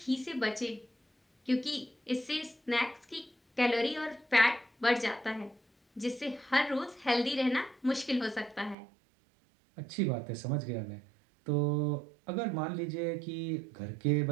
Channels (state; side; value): drops out; left; at 8.8 s